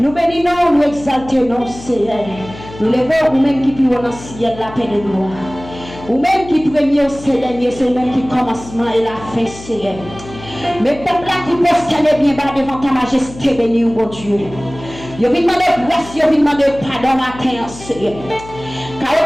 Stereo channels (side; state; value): left; noise; hum, 16 dB below the sound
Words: bénissons, nous exaltons, Seigneur. Nous levons nous-mêmes qui vivons dans le ciel là, Père de gloire. Ou-même qui premier, c'est dernier, c'est même qui commencement et la fin, Seigneur. Mais peuple là qui posterne bien bas devant ta majesté, béni, mon Dieu. Je vais demander grâce, je vais demander pardon matin, Seigneur. Car au